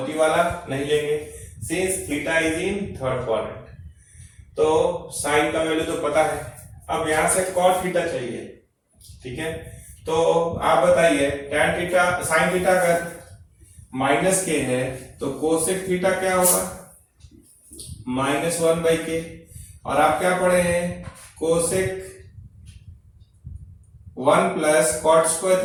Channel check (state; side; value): identical; both; correlation 1.00